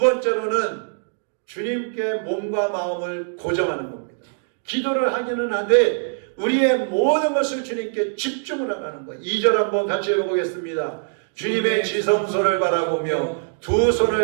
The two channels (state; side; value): silent; left; digital silence